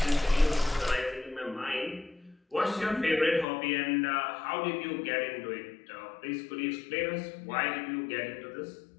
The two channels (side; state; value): right; drops out; at 3.5 s